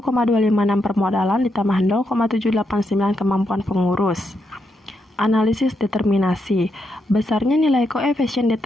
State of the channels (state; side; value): normal; both; correlation 0.81